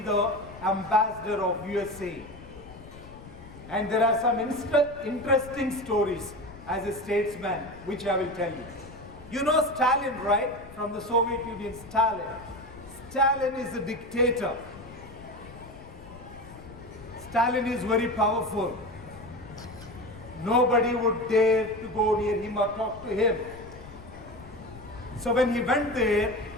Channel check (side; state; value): left; noise; rumble, 18 dB below the sound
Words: the ambassador of USA. And there are some interesting stories as a statesman, which I will tell you. You know Stalin, right? From the Soviet Union, Stalin. Stalin is a dictator. Stalin is very powerful. Nobody would dare to go near him or talk to him. So when he went there,